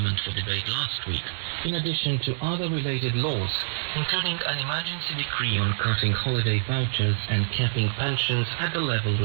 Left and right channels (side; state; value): left; silent; 61 dB below the other